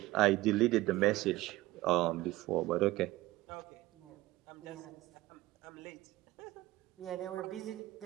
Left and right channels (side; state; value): left; quieter; 18.0 dB